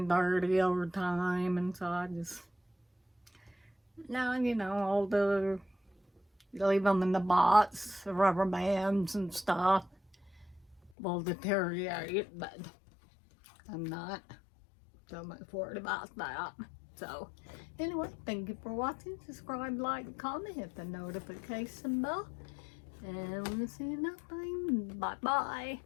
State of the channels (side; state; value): right; drops out; at 10.9 s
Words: dirty over time, and so I just, now, you know, all the, leave them in the box, the rubber bands and stuff will deteriorate, but I'm not so much worried about that. So, anyway, thank you for watching. Subscribe, like, comment, hit the notification bell, and we'll see you next time. Bye-bye.